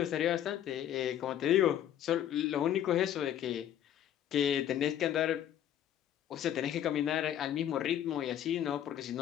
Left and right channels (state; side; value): quieter; right; 10.7 dB